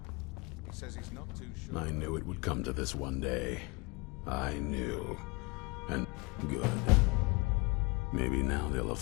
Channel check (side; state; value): right; quieter; 27.1 dB